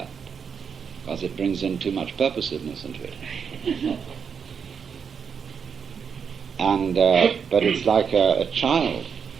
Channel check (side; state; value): left; quieter; 6.6 dB